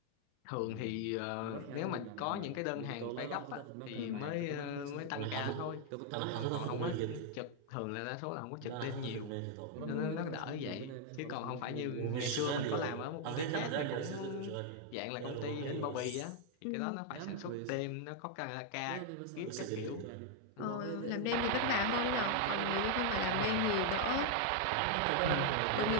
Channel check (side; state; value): both; different; correlation 0.00